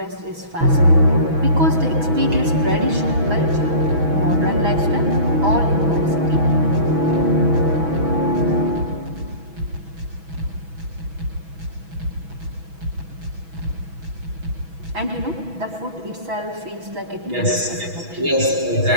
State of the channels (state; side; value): late; left; 6.1 ms